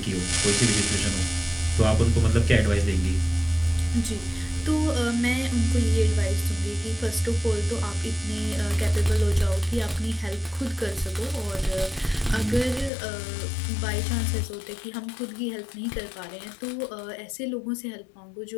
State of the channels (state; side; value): drops out; right; at 12.9 s